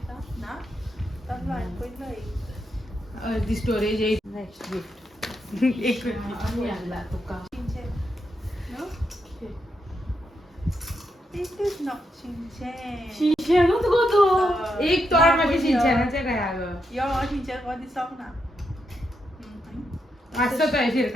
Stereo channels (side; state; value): both; normal; correlation 0.82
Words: तसलो हांवें पयलोय दी स्टोरेज इज नेक्स्ट गिफ्ट एक आम्ही आणला तुका This is not Shinchan. शिंचेनूच गो तो एक तोड मागे शिंचेनाचे काय अगं यो Shinchan हो दिसोंक ना असं काय